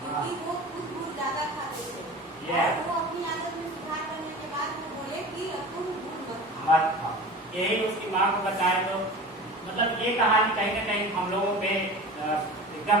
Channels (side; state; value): both; normal; correlation 0.36